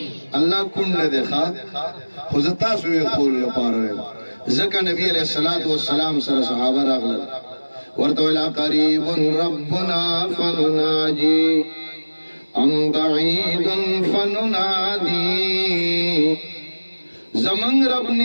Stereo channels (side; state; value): both; inverted; correlation -1.00